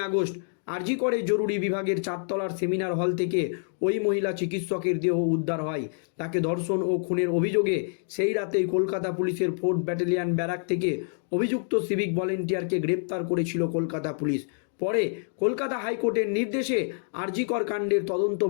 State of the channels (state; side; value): silent; right; 60 dB below the other